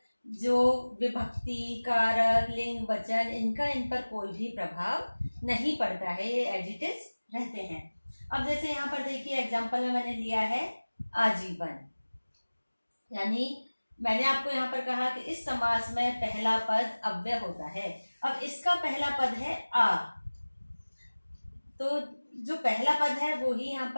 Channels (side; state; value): both; inverted; correlation -1.00